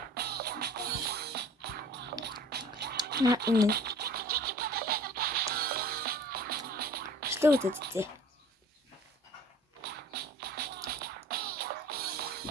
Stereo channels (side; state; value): both; normal; correlation 0.48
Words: Энэ. Что вот это?